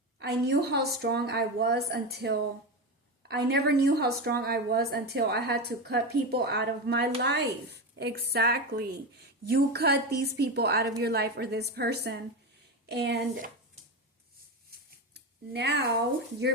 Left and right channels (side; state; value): both; normal; correlation 0.18